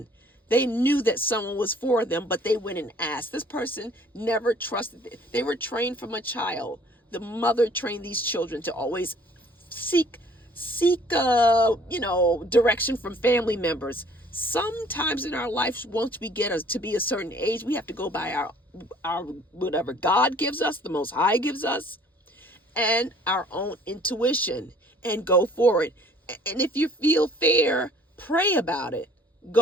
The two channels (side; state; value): both; normal; correlation 0.55